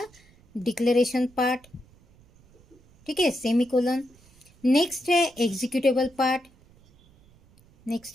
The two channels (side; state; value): right; noise; rumble, 29 dB below the sound